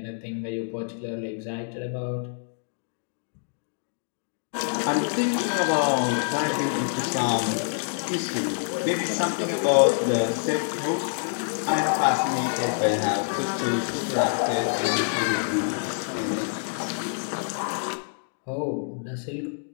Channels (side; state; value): right; silent; digital silence